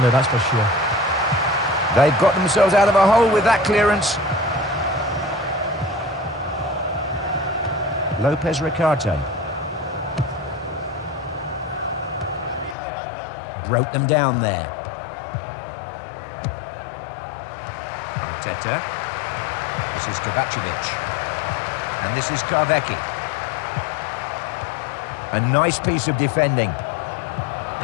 that's for sure. They've got themselves out of a hole with that clearance. Lopez Ricarte. Broke them down there. Arteta. This is Kovacevic. And this is Karvecki. A nice piece of defending.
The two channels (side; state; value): right; drops out; at 12.8 s